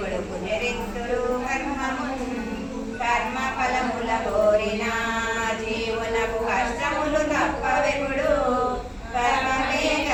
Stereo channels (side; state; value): both; identical; correlation 1.00